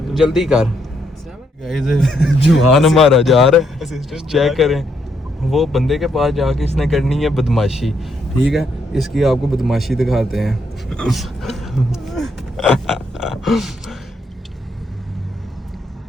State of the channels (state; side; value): normal; both; correlation 0.75